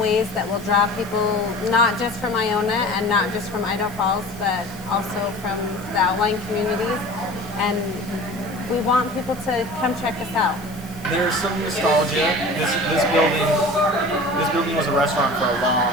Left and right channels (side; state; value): left; noise; hiss, 21 dB below the sound